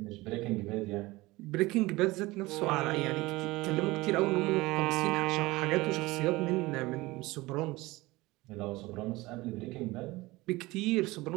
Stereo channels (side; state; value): left; quieter; 20.7 dB